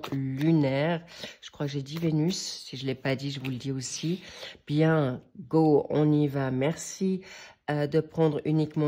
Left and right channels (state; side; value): identical; both; correlation 1.00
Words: lunaire. Je crois que j'ai dit Vénus. Si je ne l'ai pas dit, je vous le dis aussi. Bien, go, on y va. Merci de prendre